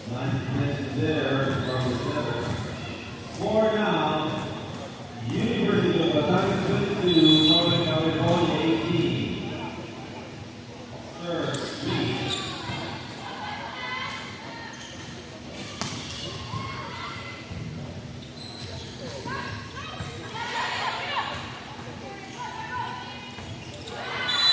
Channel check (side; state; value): both; identical; correlation 1.00